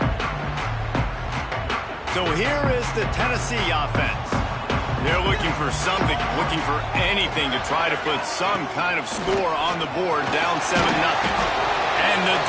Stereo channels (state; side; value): identical; both; correlation 1.00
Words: So here is the Tennessee offense. They're looking for something, looking for anything to try to put some kind of score on the board, down 7-0. And the